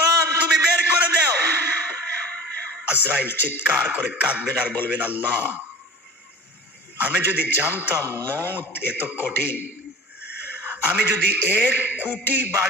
তুমি বের করে দাও। আজরাইল চিৎকার করে কাঁদবেন আর বলবেন আল্লাহ আমি যদি জানতাম মওত এত কঠিন, আমি যদি 1 কোটি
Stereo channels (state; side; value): normal; both; correlation 0.38